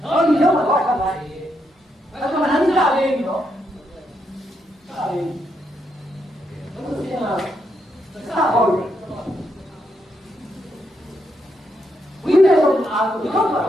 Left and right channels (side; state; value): both; normal; correlation 0.79